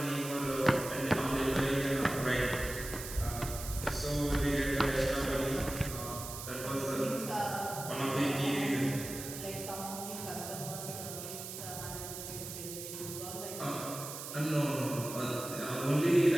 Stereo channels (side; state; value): right; noise; hiss, 9 dB below the sound